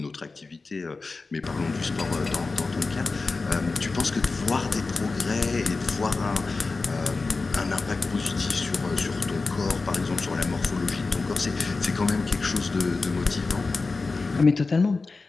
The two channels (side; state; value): right; quieter; 3.9 dB